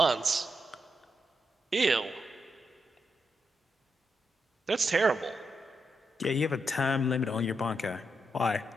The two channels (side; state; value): both; normal; correlation 0.83